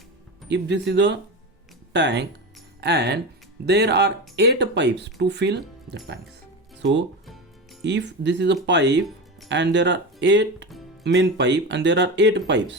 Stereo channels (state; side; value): normal; both; correlation 0.23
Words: If this is a tank and there are 8 pipes to fill the tanks. So if this is a pipe and there are 8 main pipe and there are 8